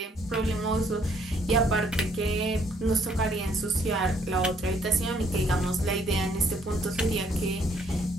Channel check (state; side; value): normal; both; correlation 0.66